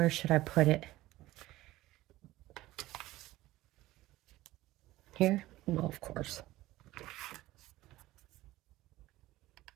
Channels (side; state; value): left; quieter; 17.1 dB